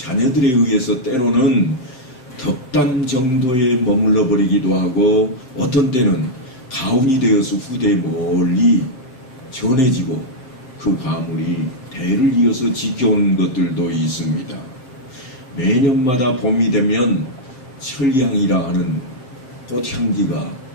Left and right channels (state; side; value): late; right; 7.7 ms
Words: 의해서 때로는 덕담 정도에 머물러 버리기도 하고 어떤 때는 가훈이 되어서 후대에 멀리 전해지고 그 가문이 대를 이어서 지켜온 것들도 있습니다. 매년마다 봄이 되면 철향이라 하는 꽃향기가